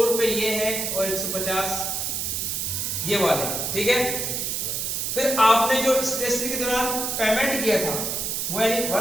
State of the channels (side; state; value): right; noise; hiss, 1 dB below the sound